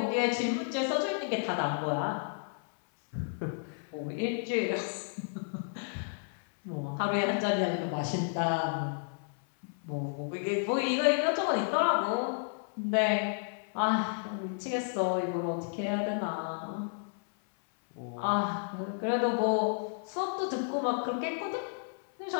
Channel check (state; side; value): silent; right; 56 dB below the other